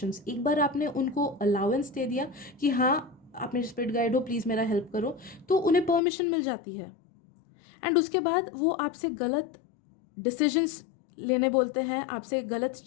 एक बार आपने उनको अलाउंस दे दिया कि हाँ आप मेरे स्पिरिट गाइड हो, प्लीज़ मेरा हेल्प करो, तो उन्हें परमिशन मिल जाती है, एंड उसके बाद वो आपसे गलत डिसीजंस लेने बोलते हैं, आपसे गलत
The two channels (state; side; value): drops out; right; at 6.0 s